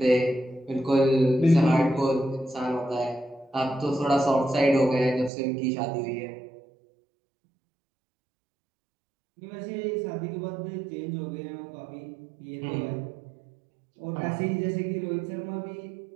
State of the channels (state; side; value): drops out; left; at 5.3 s